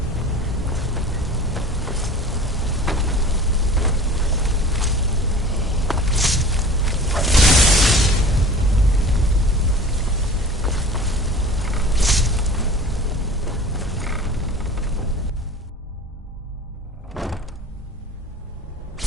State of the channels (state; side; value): normal; both; correlation 0.40